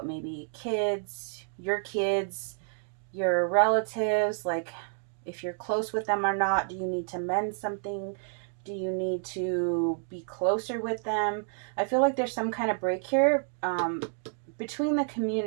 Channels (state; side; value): silent; left; 58 dB below the other